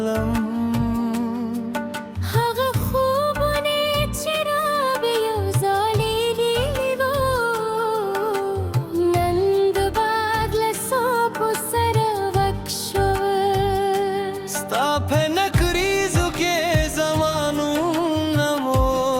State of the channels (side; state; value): both; identical; correlation 1.00